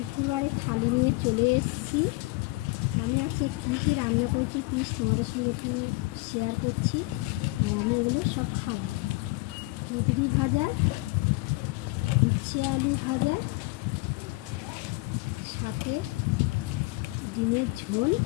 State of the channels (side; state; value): right; quieter; 23.5 dB